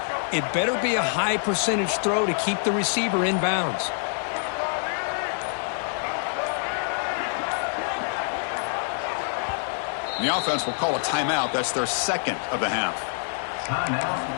it better be a high percentage throw to keep the receiver in bounds. The offense will call a timeout. That's their second of the half. Timeout,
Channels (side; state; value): right; silent; digital silence